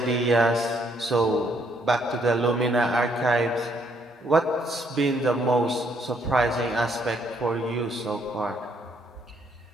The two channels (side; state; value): both; normal; correlation 0.70